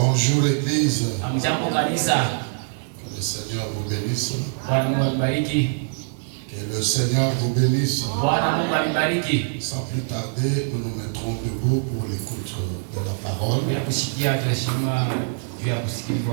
l'église. Jambo kanisa. Que le Seigneur vous bénisse. Bwana Mungu anibariki. Que le Seigneur vous bénisse. Bwana Mungu anibariki. Sans plus tarder, nous nous mettrons debout pour l'écoute de la parole. Ya kusikia tunashima juu ya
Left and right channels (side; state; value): left; silent; digital silence